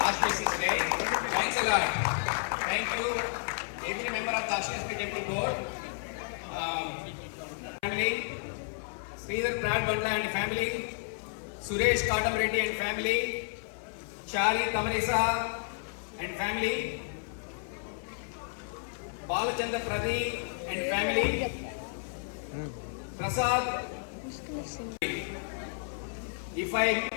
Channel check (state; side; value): silent; right; 55 dB below the other